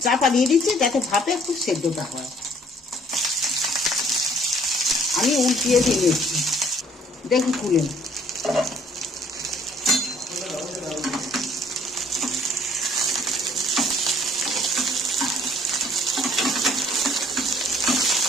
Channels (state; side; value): normal; both; correlation 0.59